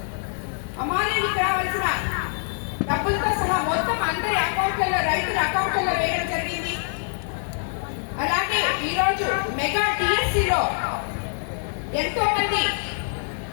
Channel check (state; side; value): silent; right; digital silence